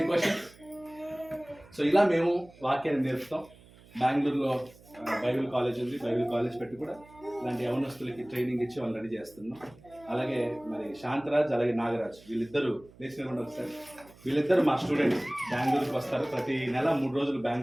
క్వశ్చన్? సో ఇలా మేము వాక్యాన్ని నేర్పుతాం. బెంగళూరులో బైబిల్ కాలేజ్ ఉంది. బైబిల్ కాలేజ్ పెట్టి కూడా ఇలాంటి యవనస్తులకి ట్రైనింగ్ ఇచ్చి వాళ్ళు రెడీ చేస్తున్నాం. అలాగే మరి శాంతరాజ్ అలాగే నాగరాజ్ వీళ్ళిద్దరూ నేషనల్ ఉండి వస్తారు. వీళ్ళిద్దరు మా స్టూడెంట్స్ బెంగళూరుకి వస్తారు. ప్రతి నెల 3 రోజులు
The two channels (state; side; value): noise; right; hum, 24 dB below the sound